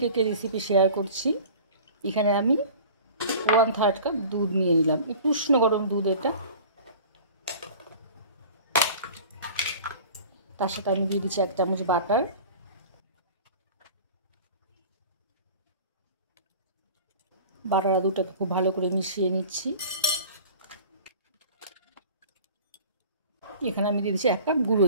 কেকের রেসিপি শেয়ার করছি। এখানে আমি 1/3 কাপ দুধ নিয়ে নিলাম, একটু উষ্ণ গরম দুধ। এটা তার সাথে আমি দিয়ে দিচ্ছি 1 চামচ বাটার। বাটার আর দুধটাকে খুব ভালো করে মিশিয়ে নিচ্ছি। এখানে আমি দিয়ে দিচ্ছি 1 কাপ গুঁড়ো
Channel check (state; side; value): inverted; both; correlation -0.42